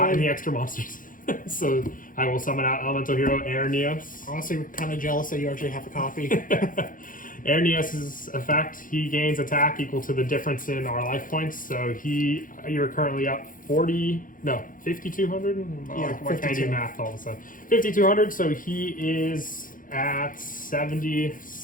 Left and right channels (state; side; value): late; right; 0.39 ms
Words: in Why? the extra monsters. So I will summon out elemental hero Air Neos. Honestly, we're kind of jealous that you actually have a copy. Air Neos' effect, he gains attack equal to the difference in our life points. So you're currently up 5,200? Yeah, Why can't I do 52. math all of a sudden? 5,200, so he is at